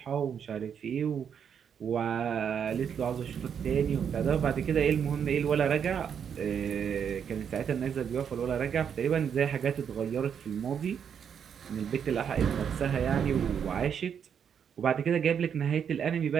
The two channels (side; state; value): left; quieter; 7.8 dB